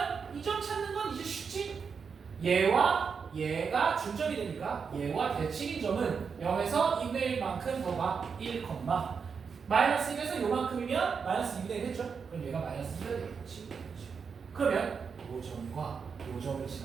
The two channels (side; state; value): left; quieter; 5.9 dB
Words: 이 점 찾는 건 이제 쉽지? 얘와 얘가 중점이 되니까 얘와 대칭인 점은 0에서 2분의 1만큼 더가 1, -1에서 요만큼이면 -2분의 1 했죠? 그럼 얘가 -2가 되겠지. 그러면 요 점과 요 점을